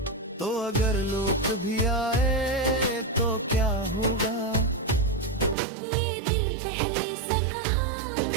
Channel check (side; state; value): left; drops out; at 5.6 s